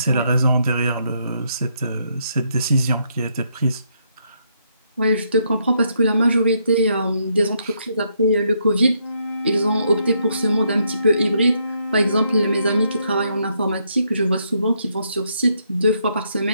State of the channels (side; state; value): both; inverted; correlation -0.75